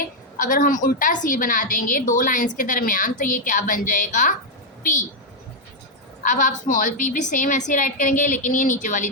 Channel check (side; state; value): both; normal; correlation 0.00